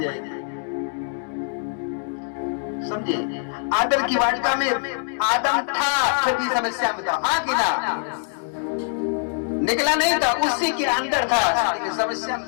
जाएगी। समझे? आदम की वाटिका में आदम था, फिर भी समस्या में था, हाँ कि ना? निकला नहीं था, उसी के अंदर था, समस्या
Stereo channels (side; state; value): right; silent; digital silence